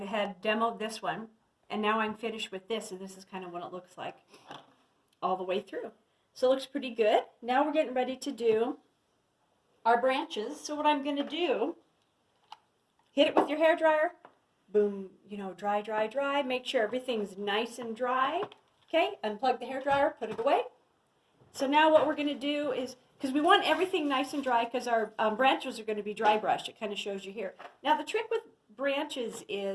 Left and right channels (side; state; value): both; identical; correlation 1.00